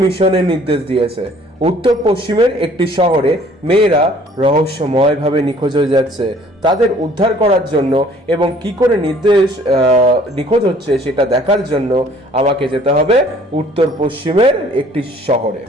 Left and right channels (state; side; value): normal; both; correlation 0.56